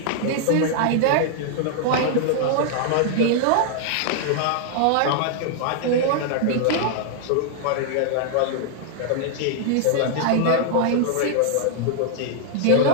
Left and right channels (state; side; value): different; both; correlation -0.01